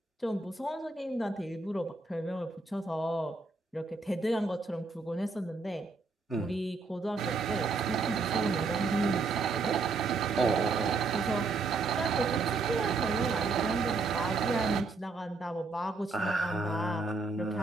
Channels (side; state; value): left; quieter; 3.9 dB